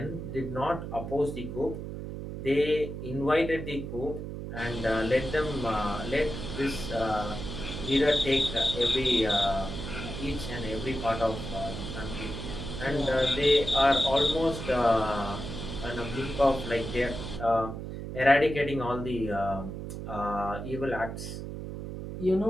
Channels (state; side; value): noise; right; hum, 7 dB below the sound